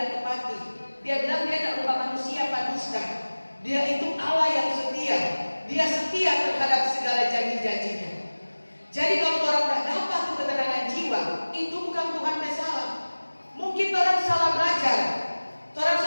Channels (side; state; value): both; inverted; correlation -1.00